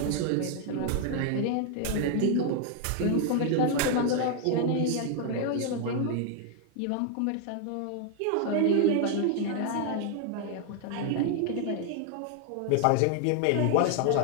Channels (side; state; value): both; different; correlation 0.00